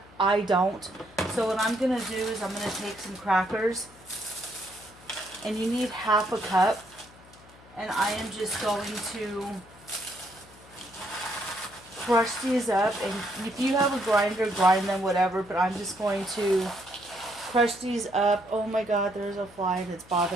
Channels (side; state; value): left; noise; hum, 24 dB below the sound